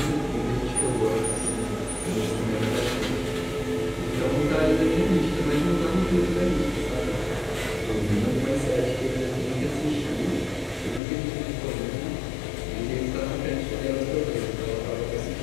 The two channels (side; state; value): right; drops out; at 11.0 s